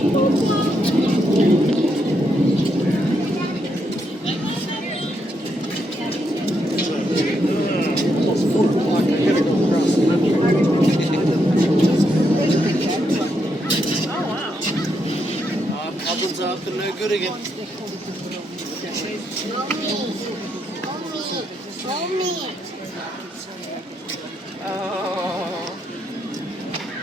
Problems up and no good again.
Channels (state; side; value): normal; both; correlation 0.79